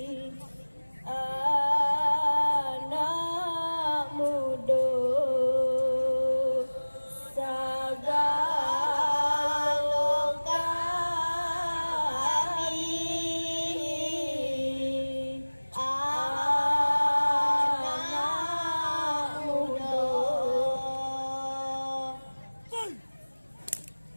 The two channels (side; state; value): both; inverted; correlation -1.00